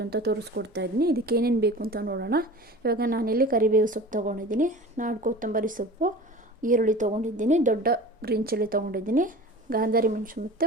ಅಂತ ತೋರಿಸ್ಕೊಡ್ತಾ ಇದ್ದೀನಿ. ಇದಕ್ಕೆ ಏನೇನು ಬೇಕು ಅಂತ ನೋಡೋಣ. ಇವಾಗ ನಾನಿಲ್ಲಿ ಕರಿಬೇವು ಸೊಪ್ಪು ತೊಗೊಂಡಿದ್ದೀನಿ, ನಾಡು ಕೊತ್ತಂಬರಿ ಸೊಪ್ಪು, ಈರುಳ್ಳಿ ತೊಗೊಂಡಿದ್ದೀನಿ, ದೊಡ್ಡ ಗ್ರೀನ್ ಚಿಲ್ಲಿ ತೊಗೊಂಡಿದ್ದೀನಿ, ಗಾಂಧಾರಿ ಮೆಣಸು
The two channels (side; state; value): both; normal; correlation 0.38